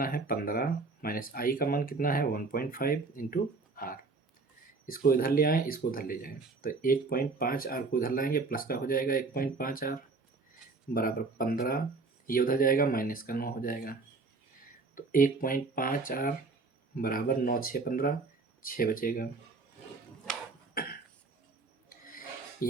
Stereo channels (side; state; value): left; quieter; 4.0 dB